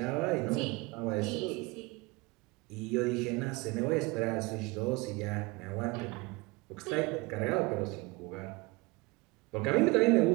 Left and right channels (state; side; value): quieter; left; 25.0 dB